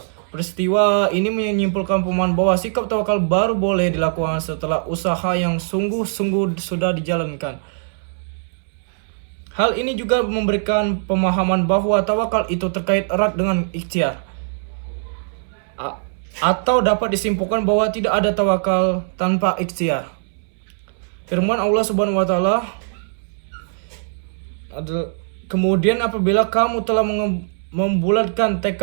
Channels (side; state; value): left; silent; 65 dB below the other